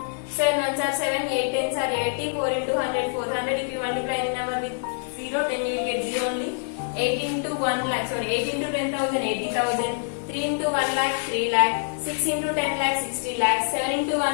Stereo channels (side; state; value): right; silent; digital silence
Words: 7 ones are 7, 8 tens are 80, 4 into 100, 400. If you multiply any number with 0, then you will get 0 only. 8 into 1 lakh, 8 into 10,000, 80,000. 3 into 1 lakh, 3 lakh. 6 into 10 lakh, 60 lakh. 7 into